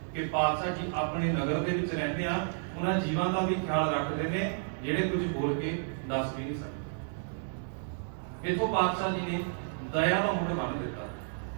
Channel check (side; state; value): left; silent; digital silence